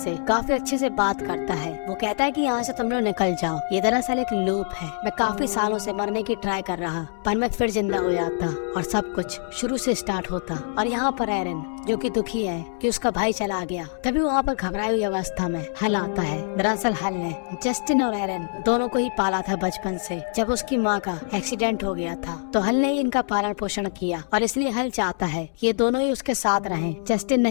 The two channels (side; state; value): right; silent; digital silence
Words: काफी अच्छे से बात करता है। वो कहता है कि यहाँ से तुम लोग निकल जाओ, ये दरअसल एक लूप है। मैं काफी सालों से मरने की ट्राई कर रहा, पर मैं फिर जिंदा हो जाता और सब कुछ शुरू से स्टार्ट होता। और यहाँ पर एरन जो कि दुखी है कि उसका भाई चला गया, तभी वहाँ पर घबराई हुई अवस्था में हल आता है। दरअसल हल ने जस्टिन और एरन दोनों को ही पाला था बचपन से। जब उसकी माँ का एक्सीडेंट हो गया था तो हल ने ही इनका पालन पोषण किया और इसलिए हल चाहता है कि ये दोनों ही उसके साथ रहें। जस्टिन